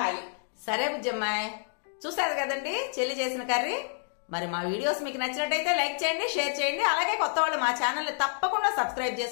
సరే బుజ్జమ్మాయి, చూసారు కదండి చెల్లి చేసిన కర్రీ. మరి మా వీడియోస్ మీకు నచ్చినట్టయితే లైక్ చేయండి, షేర్ చేయండి. అలాగే కొత్త వాళ్ళు మా ఛానల్ ని తప్పకుండా సబ్స్క్రైబ్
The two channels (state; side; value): silent; right; digital silence